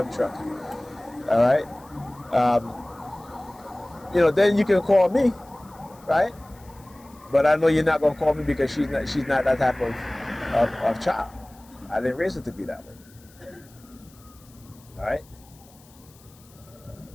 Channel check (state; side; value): noise; left; hiss, 27 dB below the sound